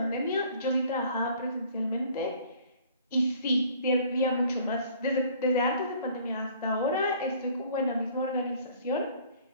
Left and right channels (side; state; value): both; inverted; correlation -0.54